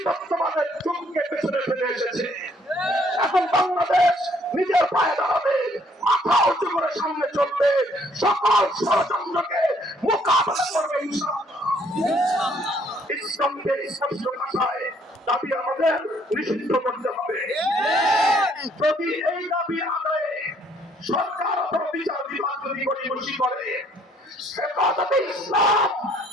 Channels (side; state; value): both; normal; correlation 0.64